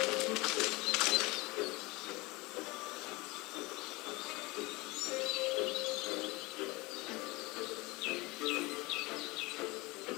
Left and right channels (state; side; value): quieter; right; 23.2 dB